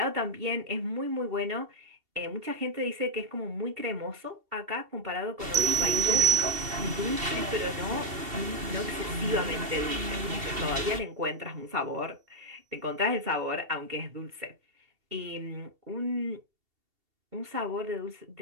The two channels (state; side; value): late; left; 2.7 ms